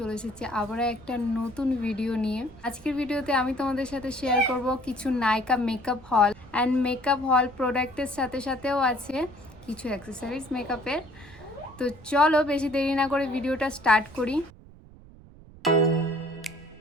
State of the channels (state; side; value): noise; right; rumble, 21 dB below the sound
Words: এসেছি আবারও একটা নতুন ভিডিও নিয়ে। আজকের ভিডিওতে আমি তোমাদের সাথে শেয়ার করব কিছু নাইকা মেকআপ হল অ্যান্ড মেকআপ হল প্রোডাক্টের সাথে সাথেও আছে কিছু অ্যাক্সেসরিজ মেকআপের। তো চলো বেশি দেরি না করে ভিডিওটা স্টার্ট করি।